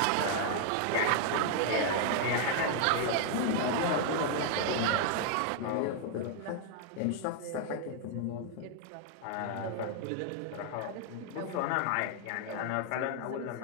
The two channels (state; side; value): different; both; correlation 0.00